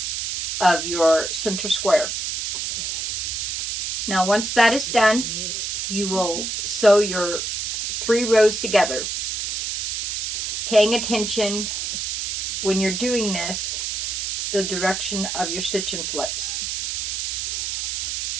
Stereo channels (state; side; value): noise; right; hiss, 2 dB below the sound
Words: of your center square. Now once that is done, you will sew your 3 rows together, paying attention when you're doing this the direction of your stitch and flips.